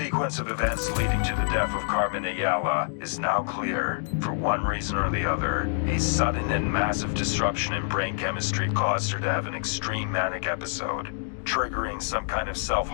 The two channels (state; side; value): silent; right; digital silence